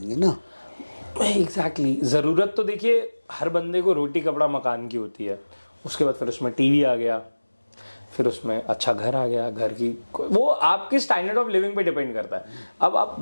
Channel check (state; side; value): inverted; both; correlation -1.00